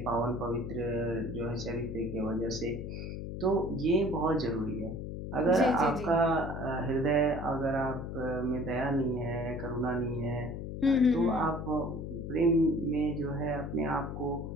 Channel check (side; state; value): left; noise; hum, 6 dB below the sound